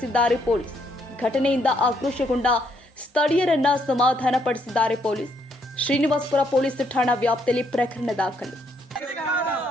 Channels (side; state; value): both; normal; correlation 0.72